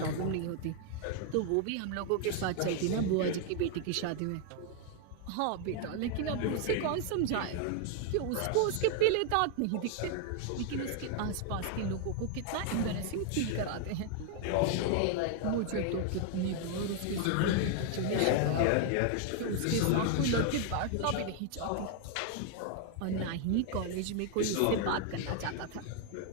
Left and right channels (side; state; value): both; different; correlation 0.00